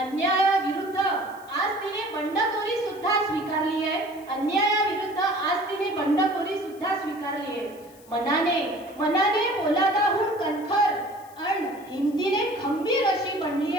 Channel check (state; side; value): noise; left; hiss, 25 dB below the sound